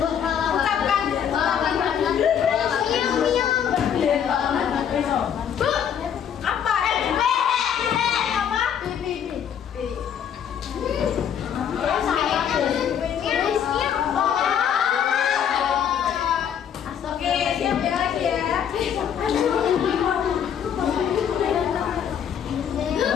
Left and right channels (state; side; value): quieter; right; 8.6 dB